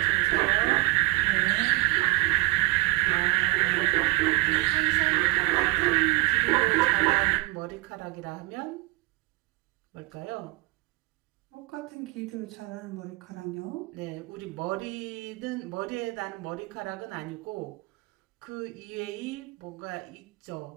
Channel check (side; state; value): left; quieter; 22.2 dB